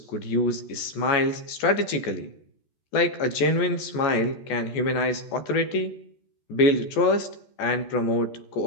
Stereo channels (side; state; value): right; late; 14 ms